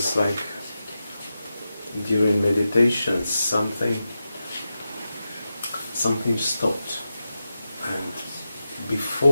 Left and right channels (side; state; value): both; inverted; correlation -0.91